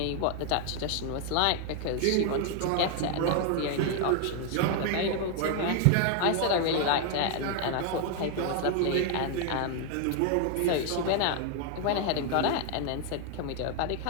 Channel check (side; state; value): both; different; correlation 0.00